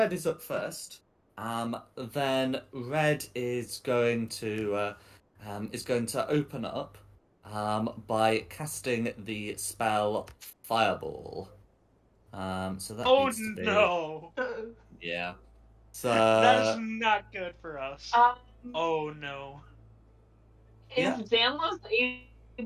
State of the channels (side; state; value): both; identical; correlation 1.00